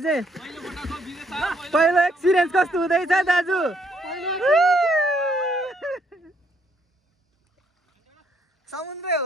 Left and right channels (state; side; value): normal; both; correlation 0.70